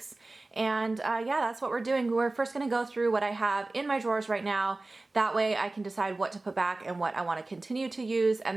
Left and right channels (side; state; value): left; quieter; 3.1 dB